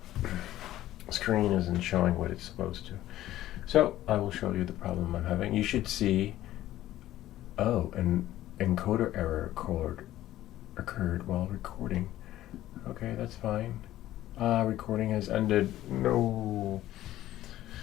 screen isn't showing what it's supposed to. So I will show you the problem I'm having. You should see, oh, an encoder error occurred while recording. Okay, that's fine. Recording has ended. No.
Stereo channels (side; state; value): right; quieter; 14.2 dB